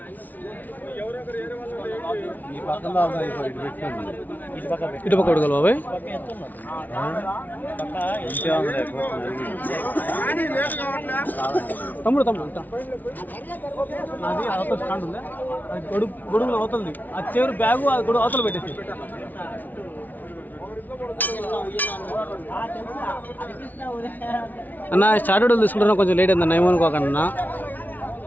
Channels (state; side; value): late; right; 0.081 ms